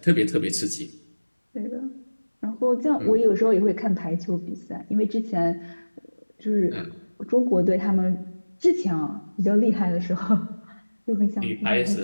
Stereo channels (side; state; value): both; inverted; correlation -1.00